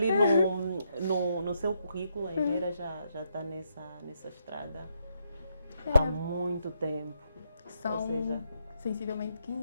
no seu currículo, a engenheira já está nessa estrada há muito tempo. São sensivelmente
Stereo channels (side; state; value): both; inverted; correlation -0.78